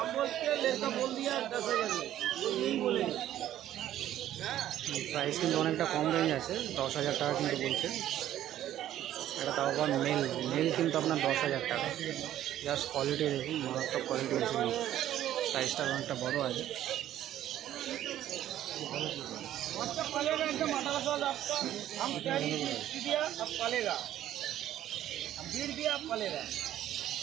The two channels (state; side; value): quieter; left; 12.3 dB